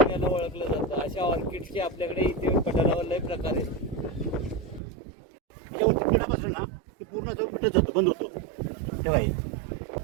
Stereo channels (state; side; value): drops out; left; at 4.8 s